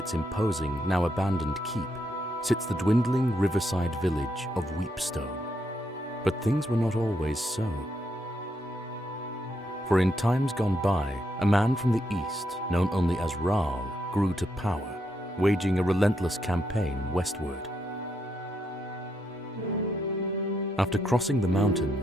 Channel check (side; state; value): both; normal; correlation 0.79